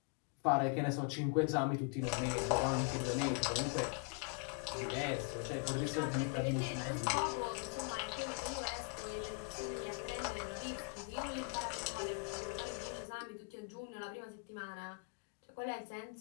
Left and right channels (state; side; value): quieter; right; 34.7 dB